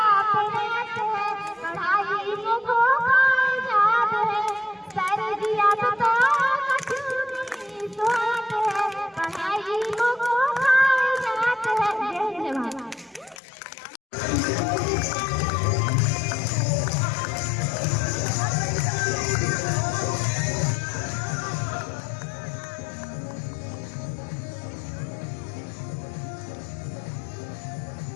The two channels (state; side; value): drops out; right; at 13.4 s